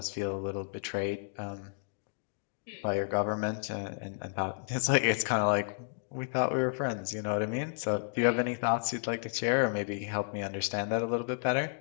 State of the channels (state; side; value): silent; right; digital silence